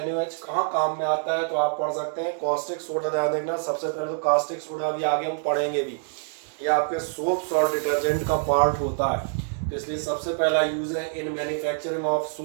कहाँ काम में आता है तो आप पढ़ सकते हैं कॉस्टिक सोडा। ध्यान देखना, सबसे पहले तो कास्टिक सोडा भी आगे हम पढ़ेंगे भी, ये आपके सोप्स और डिटर्जेंट का पार्ट होता है, तो इसलिए सबसे पहला यूज है in manufacturing of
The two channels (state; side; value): silent; left; digital silence